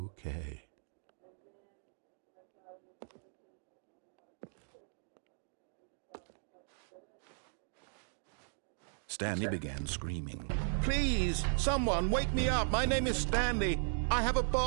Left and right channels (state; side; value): silent; left; digital silence